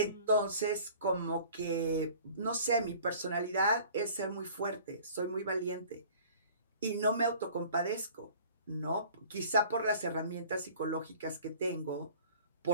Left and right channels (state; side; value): inverted; both; correlation -0.48